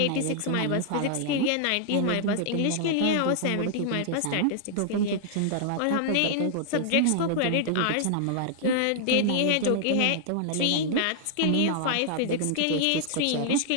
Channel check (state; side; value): different; both; correlation -0.01